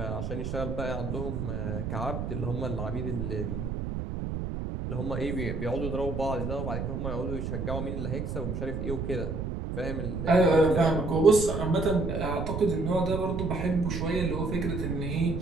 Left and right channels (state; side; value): noise; right; rumble, 3 dB below the sound